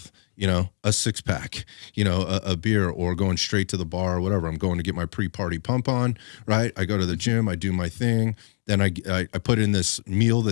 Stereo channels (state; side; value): quieter; right; 35.5 dB